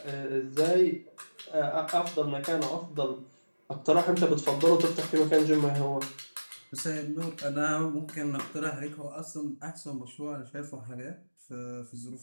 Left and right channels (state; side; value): inverted; both; correlation -1.00